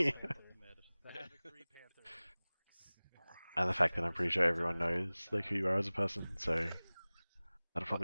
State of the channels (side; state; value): both; inverted; correlation -0.99